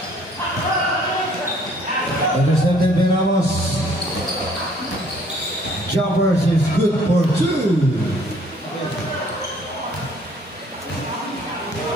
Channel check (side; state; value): both; normal; correlation 0.59